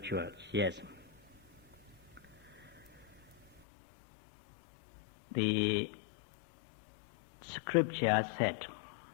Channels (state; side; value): drops out; right; at 3.6 s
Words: Yes. The scripture said,